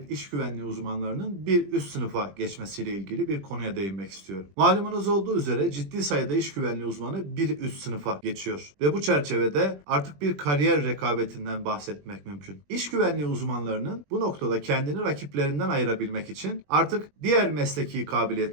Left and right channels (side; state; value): left; late; 20 ms